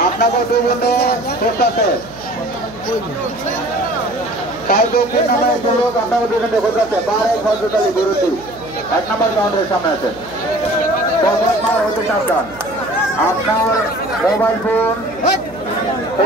আপনাকে দুই বন্ধু করতেছে তাই দক্ষিণ নামে একজন লোক আপনাকে দুজনে করতেছে বারে খন্ডটালি গরুটি 1 নম্বর কাউন্টারের সামনে আছে মার হতে সাবধান আপনার মোবাইল ফোন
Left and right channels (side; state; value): right; noise; hum, 19 dB below the sound